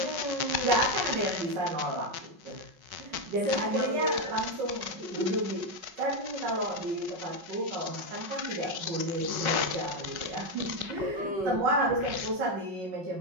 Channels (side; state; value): left; late; 5.4 ms